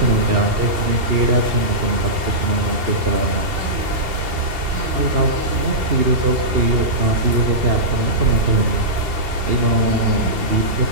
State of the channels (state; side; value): late; left; 2.7 ms